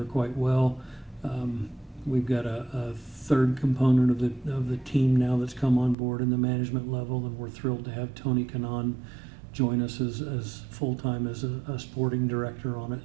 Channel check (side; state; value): left; drops out; at 6.0 s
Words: quite well. We've got a third component of the team now that's come on board in the management level, and we're thrilled to have Tony Kanaan join us as full-time as a sporting director on it.